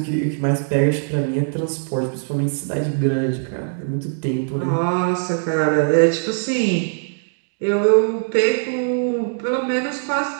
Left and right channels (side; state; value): left; silent; 63 dB below the other